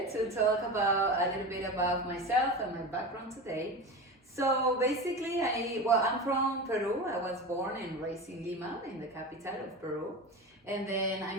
to talk about a little bit about myself and my background today. So basically, I'm from Peru. I was born and raised in Lima, in the capital of Peru. And then I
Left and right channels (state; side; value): normal; both; correlation 0.27